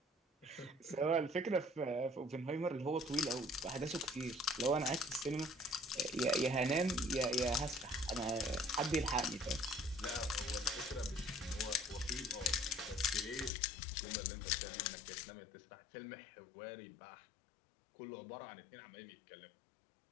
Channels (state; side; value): drops out; right; at 13.5 s